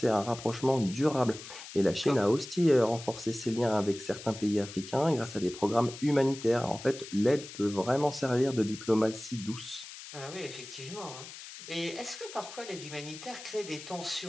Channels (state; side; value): noise; left; hiss, 13 dB below the sound